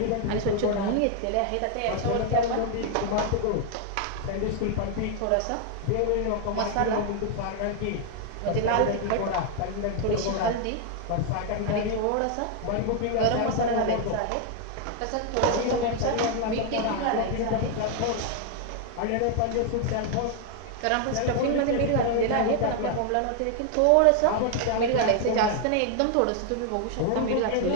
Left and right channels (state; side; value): different; both; correlation 0.00